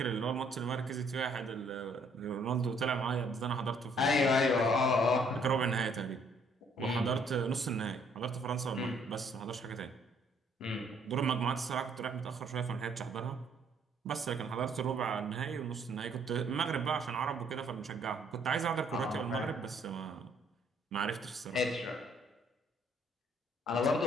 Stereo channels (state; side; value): normal; both; correlation 0.65